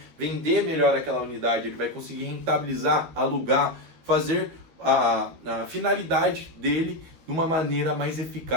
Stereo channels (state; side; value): late; left; 13 ms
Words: vender melhor aquela unidade, ele vai conseguir rentabilizar, alugar, fazer a finalidade dele de uma maneira mais